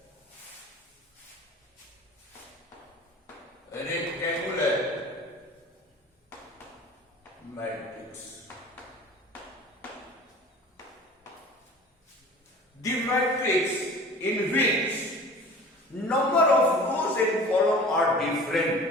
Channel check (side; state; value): both; normal; correlation 0.42